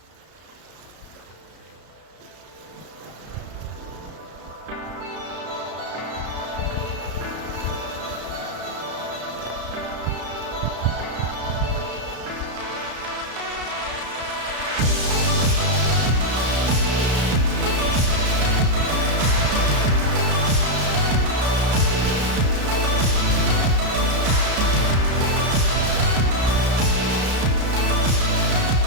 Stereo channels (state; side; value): late; left; 33 ms